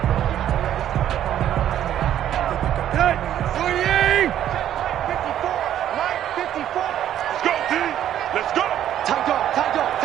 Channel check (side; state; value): left; quieter; 11.1 dB